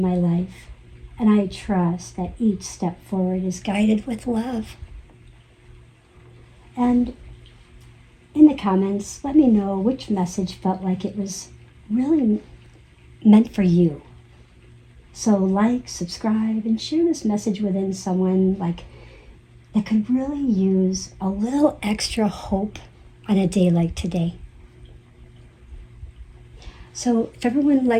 life. And I trust that each step forward is guided with love. And in the comments, let me know which message felt like it was really meant for you. So like, subscribe, and share this message within someone that could really use a little extra hope on a day like today. So if everyone would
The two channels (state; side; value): identical; both; correlation 1.00